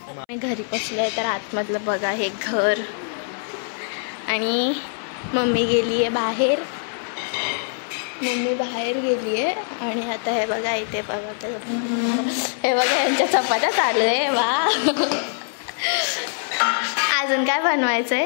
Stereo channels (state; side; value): silent; right; 63 dB below the other